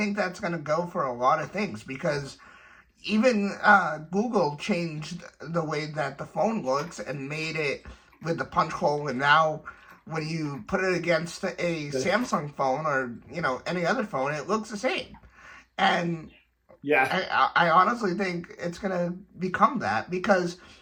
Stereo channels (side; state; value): both; identical; correlation 1.00